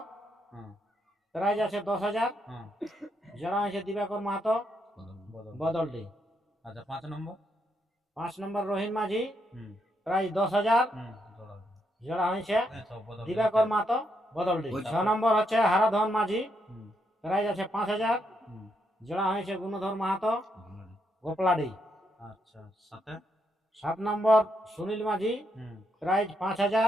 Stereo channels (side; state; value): both; normal; correlation 0.78